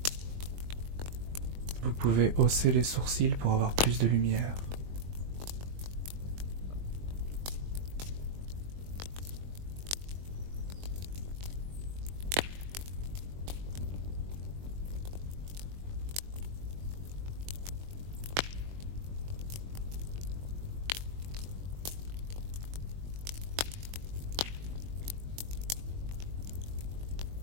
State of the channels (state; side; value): late; left; 21 ms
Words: Vous pouvez hausser les sourcils pour avoir plus de lumière.